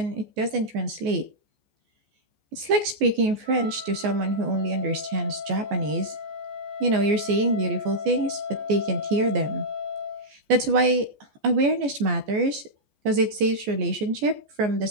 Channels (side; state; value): left; late; 14 ms